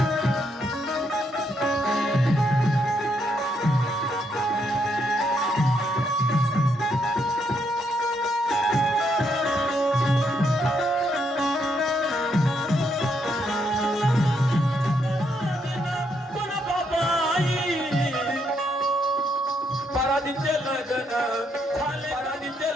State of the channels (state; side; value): normal; both; correlation 0.76